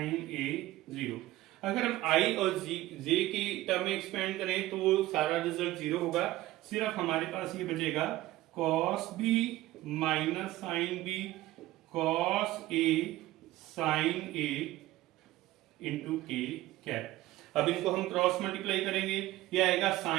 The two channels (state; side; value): quieter; left; 16.5 dB